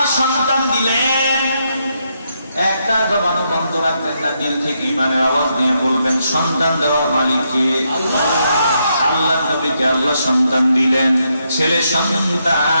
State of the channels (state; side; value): inverted; both; correlation -0.79